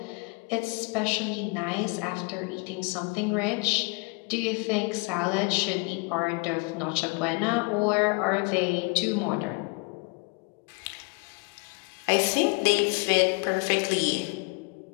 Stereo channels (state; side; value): quieter; right; 30.0 dB